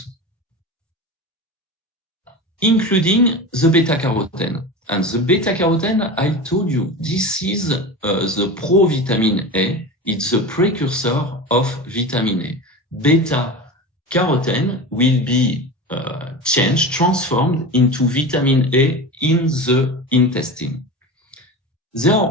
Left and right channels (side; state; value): both; normal; correlation 0.28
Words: including the beta-carotene. And the beta-carotene, I told you, this is the provitamin A. It's the precursor of vitamin A. Beta-carotene will be transformed into vitamin A in the intestine. There